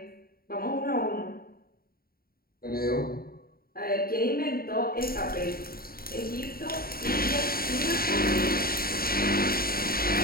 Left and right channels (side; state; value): right; late; 0.43 ms